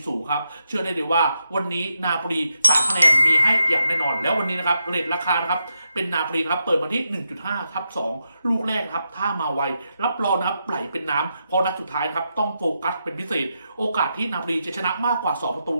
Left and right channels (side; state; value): both; inverted; correlation -0.85